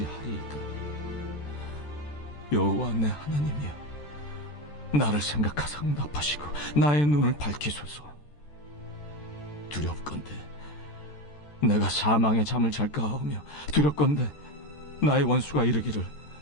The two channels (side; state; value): right; late; 14 ms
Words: 하리이까? 여호와 내 하나님이여, 나를 생각하사 응답하시고 나의 눈을 밝히소서. 두렵건대 내가 사망의 잠을 잘까 하오며, 두렵건대 나의 원수가 이르기를